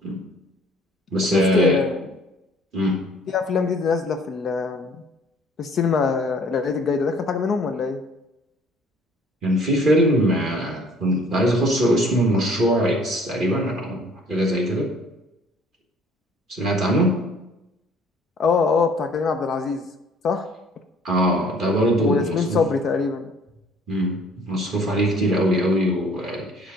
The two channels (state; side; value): normal; both; correlation 0.56